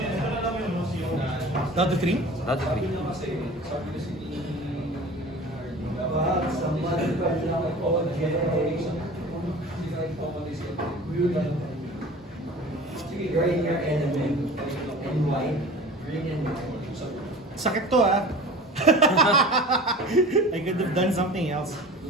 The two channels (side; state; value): both; normal; correlation 0.40